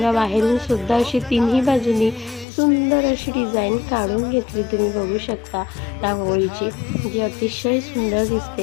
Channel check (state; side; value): drops out; right; at 2.5 s